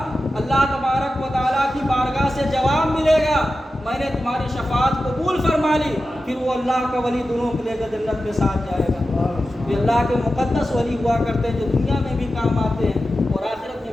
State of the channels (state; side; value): normal; both; correlation 0.92